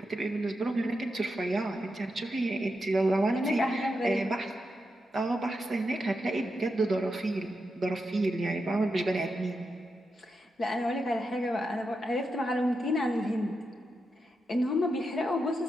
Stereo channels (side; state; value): both; normal; correlation 0.86